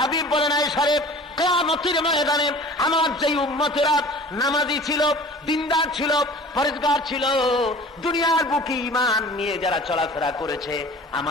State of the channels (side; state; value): both; normal; correlation 0.44